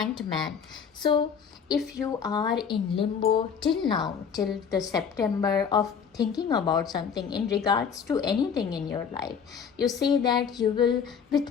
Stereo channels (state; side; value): quieter; right; 6.9 dB